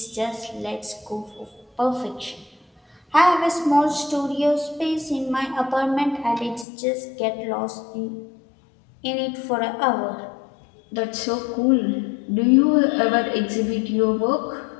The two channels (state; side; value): drops out; right; at 6.7 s